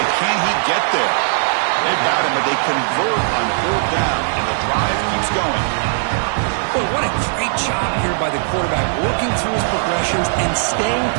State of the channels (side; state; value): left; silent; digital silence